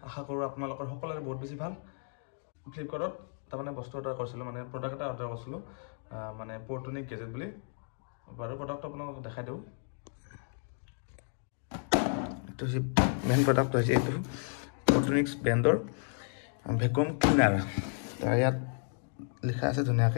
আশা কৰোঁ আপোনালোকৰ সকলোৰে বহুত বেছি ভাল। ফ্লিপকাৰ্টত তাৰমানে বস্তু অৰ্ডাৰ কৰিছিলোঁ, মানে প্ৰডাক্ট এটা অৰ্ডাৰ কৰিছিলোঁ, মানে পৰ্টনিক গেজেট বুলি। বাৰু প্ৰডাক্টটো আপোনালোকক দেখাই দিওঁ। এইটো হৈছে মেইন প্ৰডাক্ট, হৈছে এইটো পৰ্টনিক্স ব্ৰেণ্ডৰ ভেকুৱাম ক্লিনাৰ। ইয়াত লিখা আছে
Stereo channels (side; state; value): right; silent; 56 dB below the other